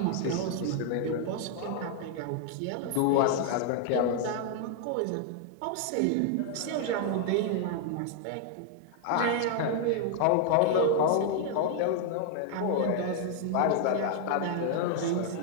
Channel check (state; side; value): different; both; correlation 0.00